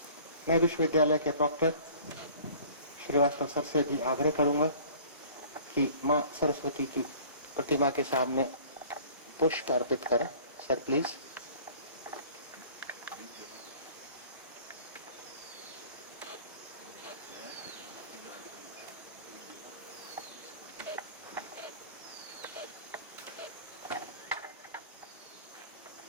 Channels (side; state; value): both; inverted; correlation -0.49